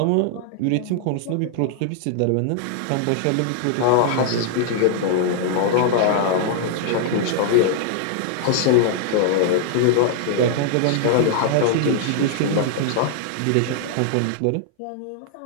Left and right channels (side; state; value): both; different; correlation -0.01